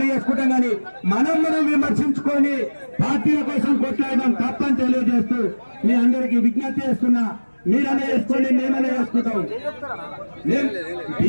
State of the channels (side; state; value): both; inverted; correlation -1.00